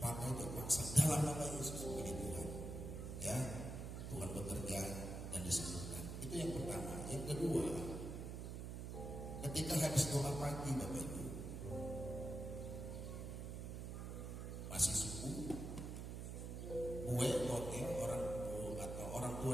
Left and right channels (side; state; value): right; noise; hum, 5 dB below the sound